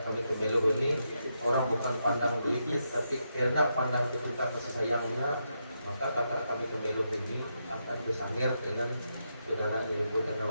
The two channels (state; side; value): inverted; both; correlation -0.83